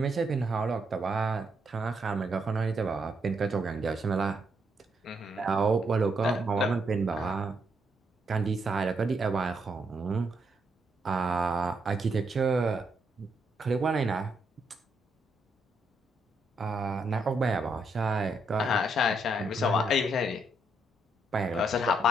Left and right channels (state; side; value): normal; both; correlation 0.77